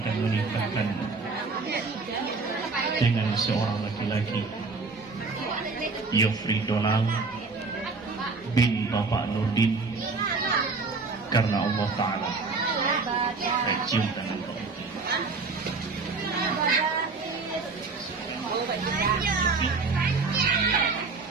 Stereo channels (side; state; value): left; quieter; 4.2 dB